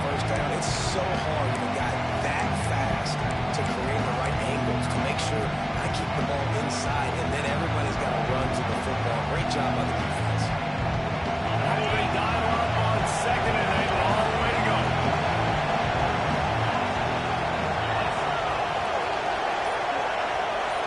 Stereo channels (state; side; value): identical; both; correlation 1.00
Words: first down. It's so hard when a guy that fast to create the right angles to make sure I keep the ball inside, and then everybody's got to run to the football. Great job by the defense. Oh, they dial up on second and a long way to go.